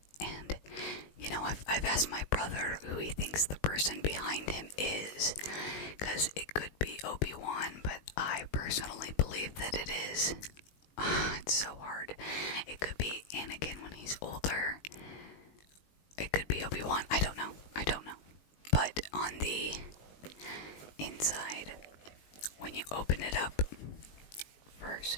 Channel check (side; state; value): right; late; 20 ms